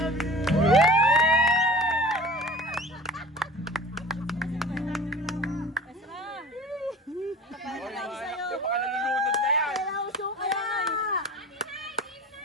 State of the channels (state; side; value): normal; both; correlation 0.39